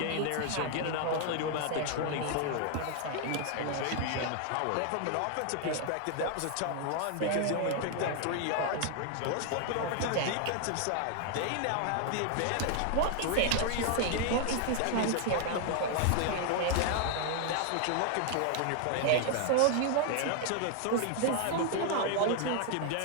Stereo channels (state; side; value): different; both; correlation 0.00